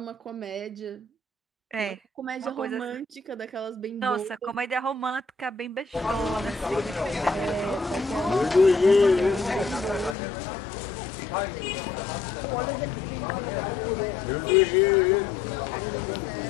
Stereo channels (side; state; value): right; drops out; at 10.2 s